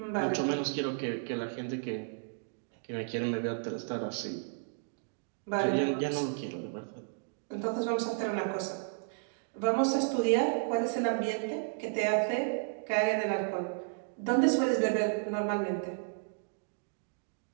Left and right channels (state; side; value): silent; left; digital silence